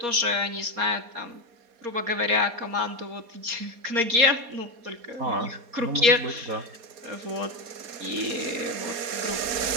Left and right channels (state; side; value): late; left; 4.2 ms